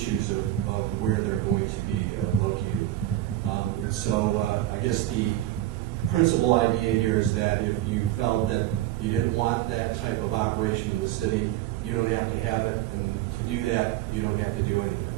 of where they're going to be located. And so I guess the principal idea here is that if you felt that you didn't want that type of operation in the city, you don't have to have it, and to do that, you don't have to do anything.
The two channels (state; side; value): quieter; left; 14.5 dB